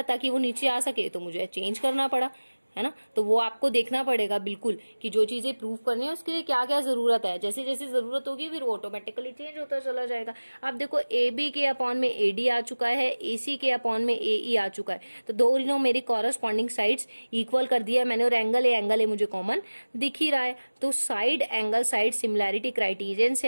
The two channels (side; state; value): both; inverted; correlation -1.00